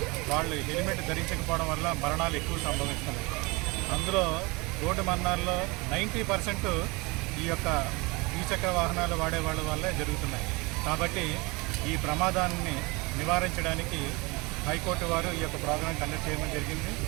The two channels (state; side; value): quieter; left; 25.8 dB